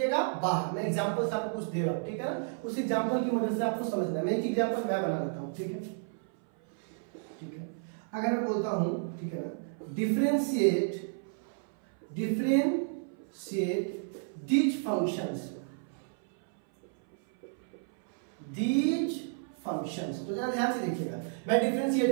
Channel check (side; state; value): left; silent; 57 dB below the other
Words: बाहर। मैं एग्जांपल आपको कुछ दे रहा हूं, ठीक है ना? उस एग्जांपल की मदद से आपको समझना है। मैं एक एग्जांपल मैं बना लेता हूं, ठीक है? ठीक है, अगर मैं बोलता हूं, ठीक है ना, डिफरेंशिएट these functions, तो जरा ध्यान से देखिएगा, मैं